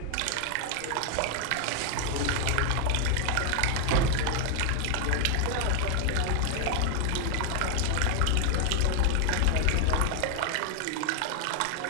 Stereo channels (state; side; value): different; both; correlation 0.00